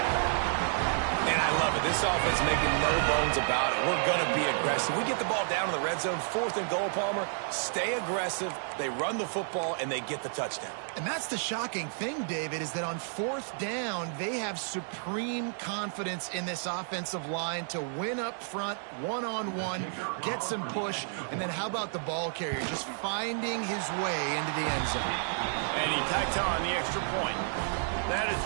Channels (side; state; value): left; silent; digital silence